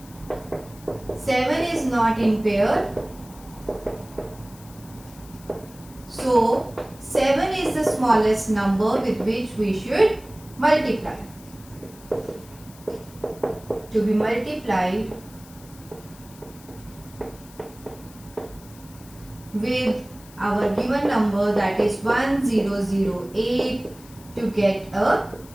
7 is not in pair, so 7 is the smallest number with which we should multiply. To be multiplied with our given number, that is 1008, to get a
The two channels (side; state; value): left; noise; hiss, 22 dB below the sound